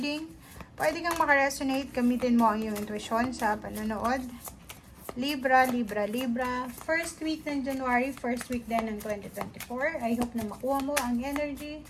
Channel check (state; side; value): identical; both; correlation 1.00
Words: Pwede kang makaresonate, gamitin mo ang iyong intuition sa panonood. Libra, Libra, Libra. First week ng January, first week din ng 2024. I hope na makuha mo ang energy.